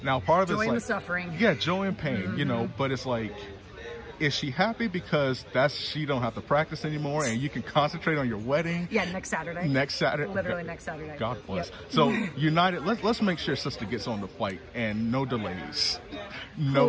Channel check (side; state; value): both; identical; correlation 1.00